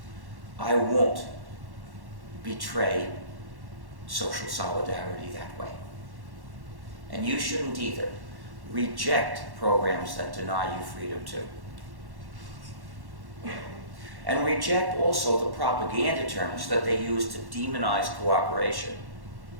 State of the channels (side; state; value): left; late; 1.1 ms